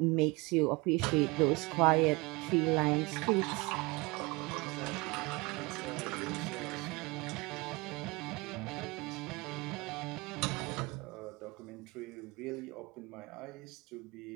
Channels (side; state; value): left; quieter; 25.3 dB